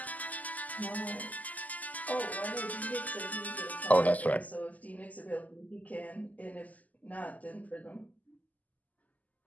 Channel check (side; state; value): right; late; 0.078 ms